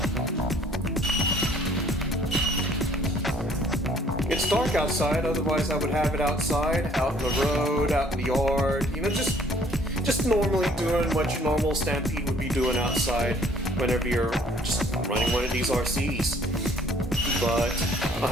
It's dark outside, otherwise I would have it outside, out in the road, out in the yard, just normally doing what your normal Stampede would be doing outside whenever you're just running one of these RCs. But I'll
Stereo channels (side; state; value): both; normal; correlation 0.58